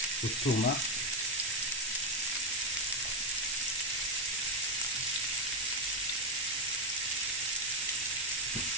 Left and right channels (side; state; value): both; normal; correlation 0.07